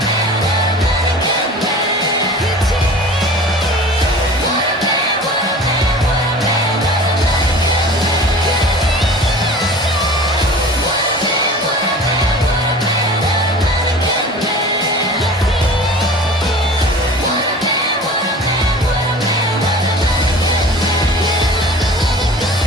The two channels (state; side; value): normal; both; correlation 0.41